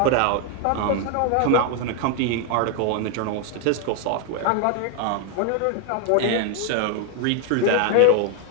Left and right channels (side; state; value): both; different; correlation 0.01